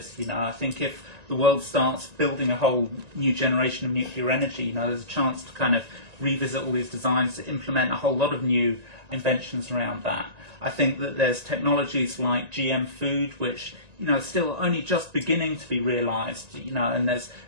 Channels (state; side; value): late; left; 1.9 ms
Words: I think if the world starts building a whole new generation of nuclear energy, there's a chance to kind of revisit all these designs, to implement a whole lot of new inventions around that. I think that there's technologies like GM food, which still only just beginning to be realised. And there's